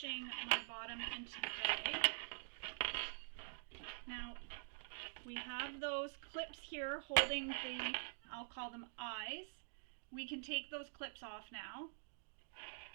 my bottom into the bag. Now we have those clips here holding the, I'll call them eyes. We can take those clips off now.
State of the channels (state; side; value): silent; left; digital silence